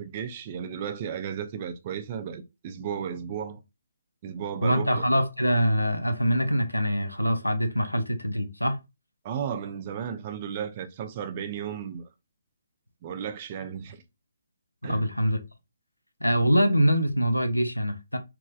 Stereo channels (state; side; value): inverted; both; correlation -0.87